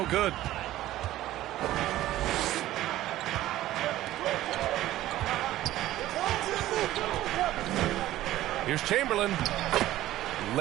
good. Here's Chamberlain.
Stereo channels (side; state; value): left; quieter; 14.8 dB